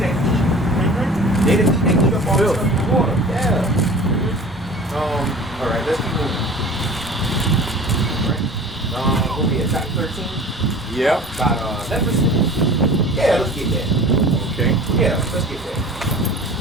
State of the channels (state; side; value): normal; both; correlation 0.41